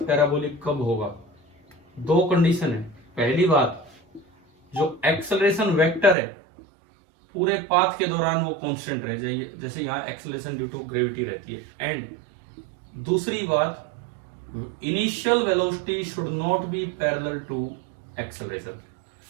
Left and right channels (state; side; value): drops out; left; at 6.2 s